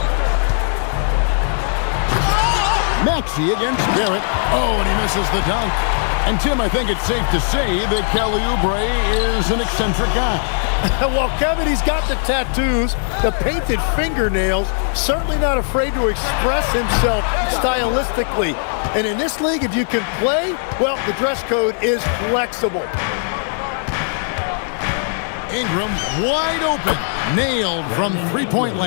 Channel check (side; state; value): right; silent; 67 dB below the other